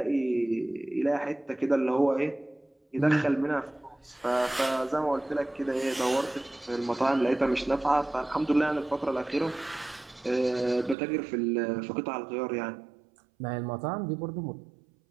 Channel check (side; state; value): left; drops out; at 11.0 s